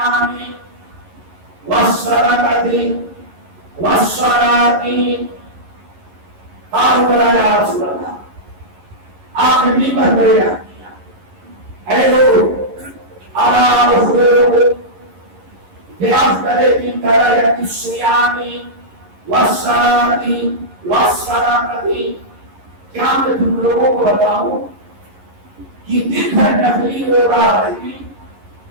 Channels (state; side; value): late; left; 11 ms